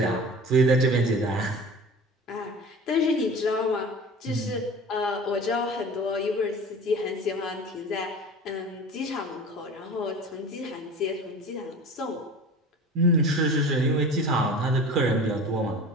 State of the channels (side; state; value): both; normal; correlation 0.38